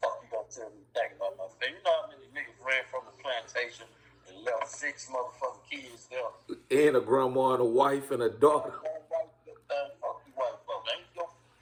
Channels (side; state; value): both; identical; correlation 1.00